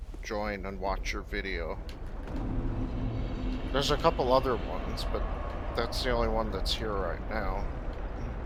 join and watch your video. There's a couple other ones, but that's the only one that's here right now.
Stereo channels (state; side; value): identical; both; correlation 1.00